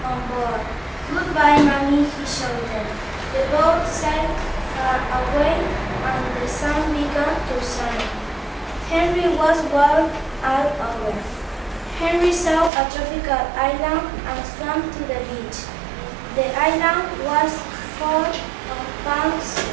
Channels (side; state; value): left; drops out; at 12.7 s